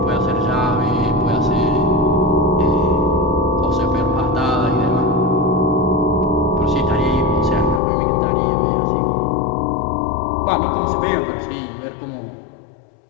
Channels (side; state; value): right; drops out; at 7.8 s